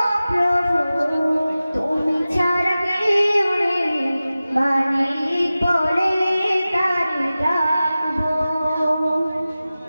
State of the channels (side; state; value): both; inverted; correlation -0.96